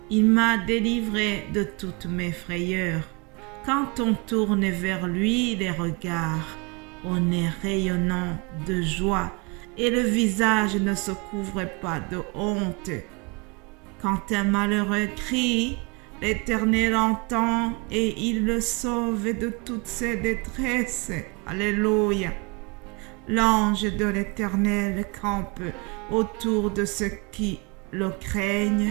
il m'a délivré de toutes mes frayeurs. Quand on tourne vers lui les regards, on est rayonnant de joie et le visage ne se couvre pas de honte. Quand un malheureux crie, l'Éternel entend et il le sauve de toutes ses détresses. Alléluia. L'ange de l'Éternel campe autour de ceux qui le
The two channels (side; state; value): left; quieter; 30.2 dB